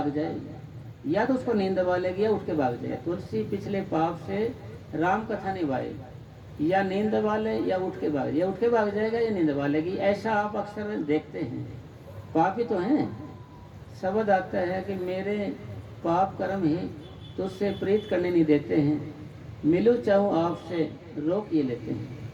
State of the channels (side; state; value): both; identical; correlation 1.00